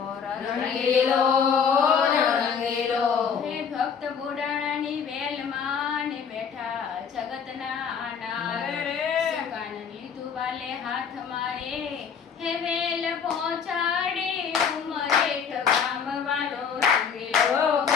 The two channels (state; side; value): quieter; right; 6.8 dB